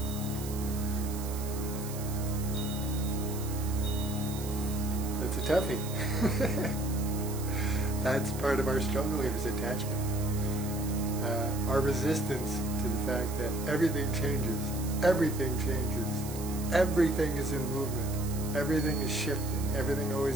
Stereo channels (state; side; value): noise; right; hiss, 12 dB below the sound